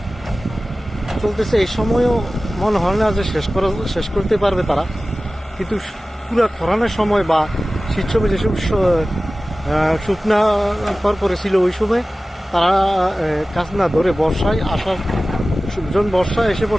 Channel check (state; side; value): normal; both; correlation 0.97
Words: চলতেছে, এই সময়ও মনে হয় না যে শেষ করতে পারবে তারা। কিন্তু পুরো খরানোর সময় বা শীত সময় যেসব শুকনা পরে ছিল ওই সময় তারা কাজ না ধরে বর্ষায় আসার যখন বর্ষা এসে